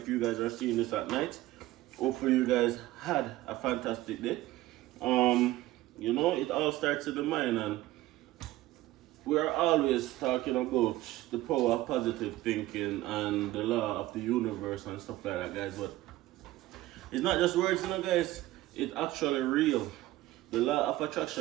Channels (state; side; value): quieter; left; 16.5 dB